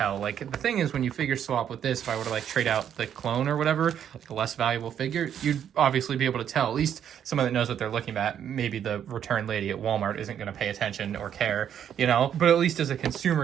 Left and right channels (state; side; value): quieter; left; 9.3 dB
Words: Like, the thing is, when you figure swap with this, if I were to like trade out the clone or whatever, like a less valuable figure, you'd obviously be able to tell. At least someone that knows what they're looking at. Maybe the return lady at Walmart isn't gonna pay attention or care, you know? But at least as a